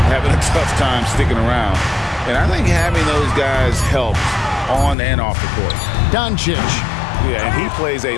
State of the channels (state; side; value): drops out; right; at 5.0 s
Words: having a tough time sticking around. And I think having those guys helps on and off the court. Doncic. Yeah, and he plays